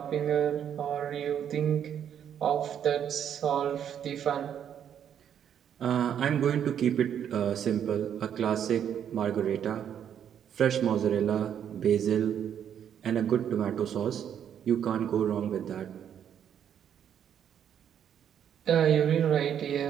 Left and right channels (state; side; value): quieter; left; 9.1 dB